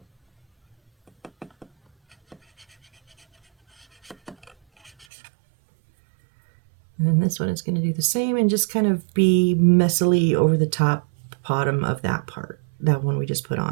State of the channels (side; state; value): left; drops out; at 5.1 s